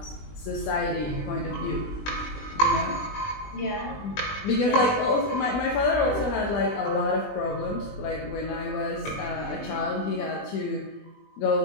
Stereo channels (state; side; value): late; right; 20 ms